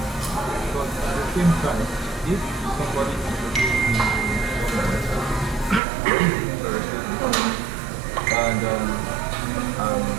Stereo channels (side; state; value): left; drops out; at 5.8 s